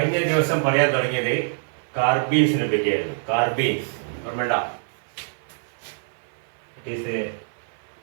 ദിവസം പറയാൻ തുടങ്ങിയത് കാർബീൻസിനെ പറ്റിയായിരുന്നു. കാർബീൻസ് ഓർമ്മണ്ട? It is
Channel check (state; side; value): silent; left; 62 dB below the other